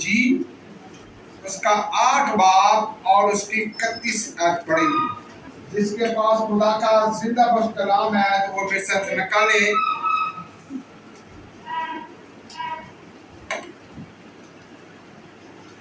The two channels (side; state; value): both; identical; correlation 1.00